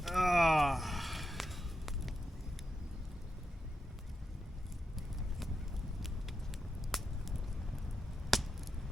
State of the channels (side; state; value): both; normal; correlation 0.87